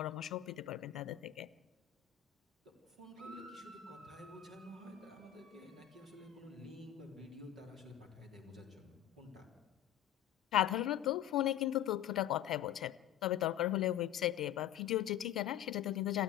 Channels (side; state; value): right; quieter; 12.1 dB